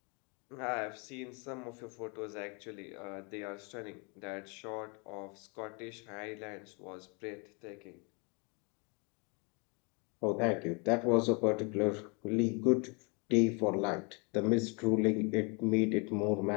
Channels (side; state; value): right; quieter; 32.4 dB